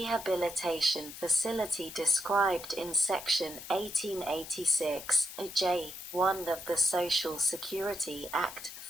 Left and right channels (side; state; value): left; noise; hiss, 13 dB below the sound